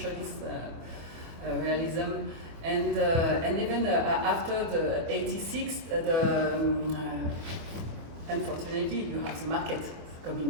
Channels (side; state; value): left; late; 25 ms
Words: realism, and even after the 86, unfortunately you have the market